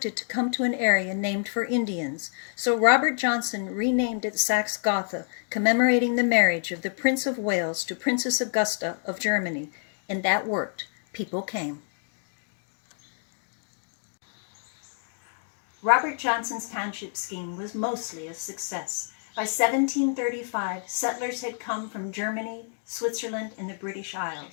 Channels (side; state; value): right; silent; digital silence